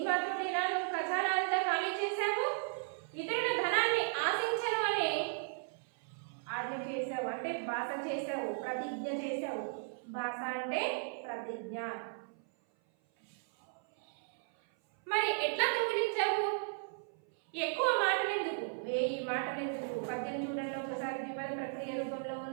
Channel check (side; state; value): left; silent; 54 dB below the other